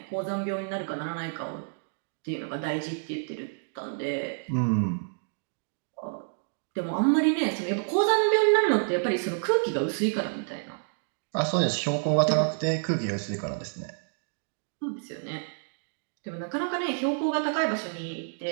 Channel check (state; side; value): silent; left; digital silence